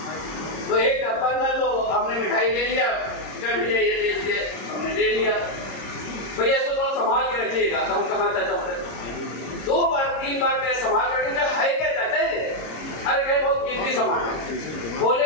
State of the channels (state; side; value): late; right; 26 ms